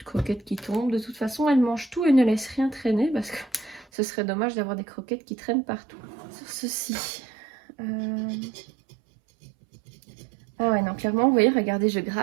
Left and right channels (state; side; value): drops out; left; at 3.9 s